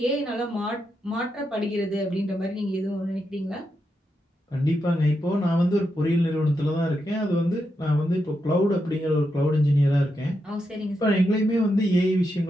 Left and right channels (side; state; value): both; normal; correlation 0.84